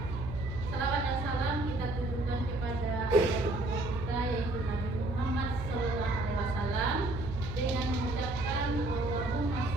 Salawat dan salam kita tujukan kepada kita yaitu Nabi Muhammad Sallallahu Alaihi Wasallam dengan mengucapkan Allahumma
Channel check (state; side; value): noise; right; hum, 6 dB below the sound